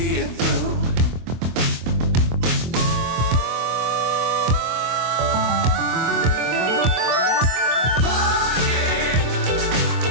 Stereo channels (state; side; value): late; left; 24 ms